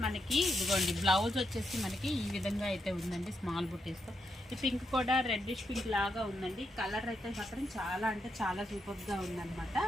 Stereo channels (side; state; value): both; normal; correlation 0.82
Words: మనకి ఇదిగోండి బ్లౌజ్ వచ్చేసి మనకి ఈ విధంగా అయితే ఉందండి, స్మాల్ బుటీస్తో. ఈ పింక్ కూడా రెడ్డిష్ పింక్ లాగా ఉందండి. కలర్ అయితే మాత్రం చాలా అంటే చాలా సూపర్గా ఉందన్నమాట.